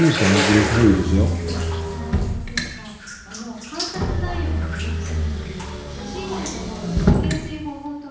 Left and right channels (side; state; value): both; identical; correlation 1.00